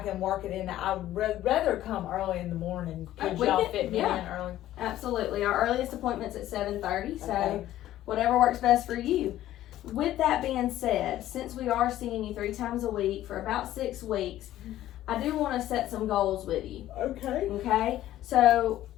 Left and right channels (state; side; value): quieter; right; 13.6 dB